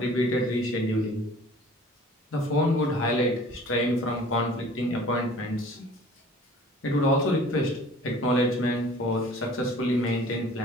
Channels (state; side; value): normal; both; correlation 0.48